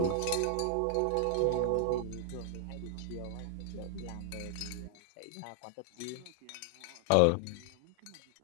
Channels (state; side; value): different; both; correlation 0.00